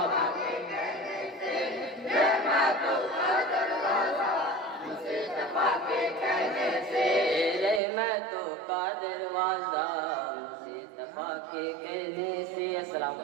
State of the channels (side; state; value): left; drops out; at 7.8 s